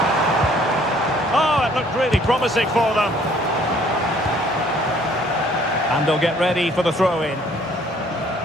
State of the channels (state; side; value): normal; both; correlation 0.59